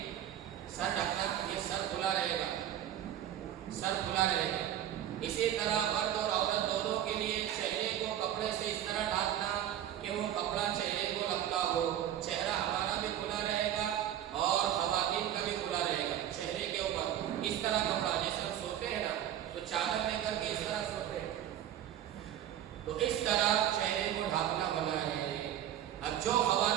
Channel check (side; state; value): left; quieter; 11.1 dB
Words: سر ڈھکنا، یہ سر کھلا رہے گا، سر کھلا رہے گا. اسی طرح مرد اور عورت دونوں کے لیے چہرے کو کپڑے سے اس طرح ڈھانپنا کہ وہ کپڑا چہرے کو لگتا ہو. چہرہ ہمارا بھی کھلا رہے گا اور خواتین کا بھی کھلا رہے گا. چہرے کے اوپر اس طرح کپڑا، جیسے ہم سوتے ہیں نا تو چادر لے کر کے اس طرح سوتے ہیں، تو اس طرح چہرے کو ڈھانپنا منع ہے. اب جو